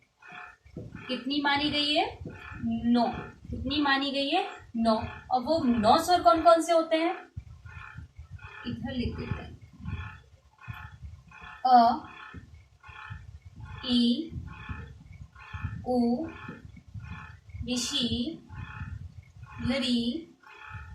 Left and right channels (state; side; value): identical; both; correlation 1.00